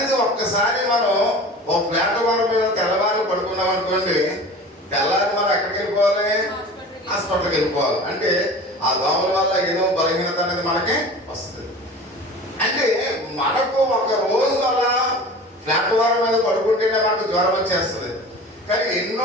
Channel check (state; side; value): normal; both; correlation 0.38